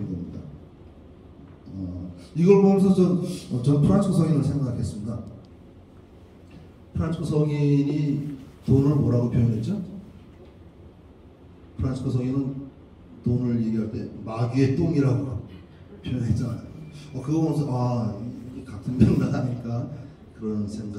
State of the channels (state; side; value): identical; both; correlation 1.00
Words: 겁니다. 이걸 보면서 전 프란치스코 성인을 생각했습니다. 프란치스코 성인이 돈을 뭐라고 표현했죠? 프란치스코 성인은 돈을 얘기할 때 마귀의 똥이라고 표현했잖아요. 그거 보면서 이게 같은 맥락하니까 그런